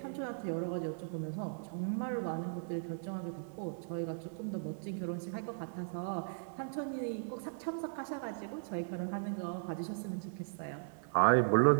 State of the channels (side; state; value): left; silent; 53 dB below the other